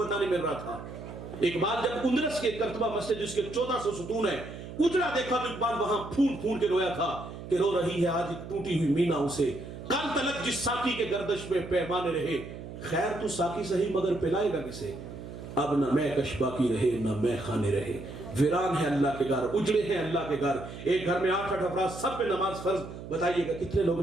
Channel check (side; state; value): right; noise; hum, 11 dB below the sound